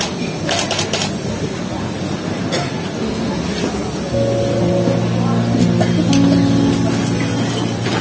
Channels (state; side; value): identical; both; correlation 1.00